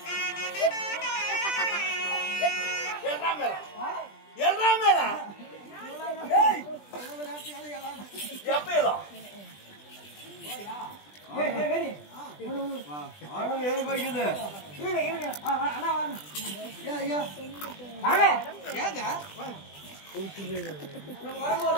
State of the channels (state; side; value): late; right; 20 ms